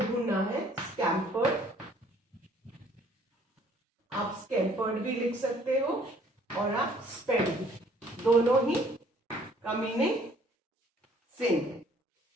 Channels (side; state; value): both; normal; correlation 0.59